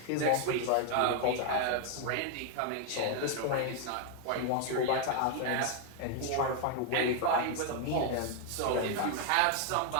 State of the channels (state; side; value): different; both; correlation 0.00